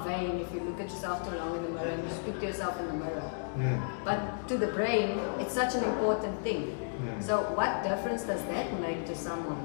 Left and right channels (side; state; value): right; silent; digital silence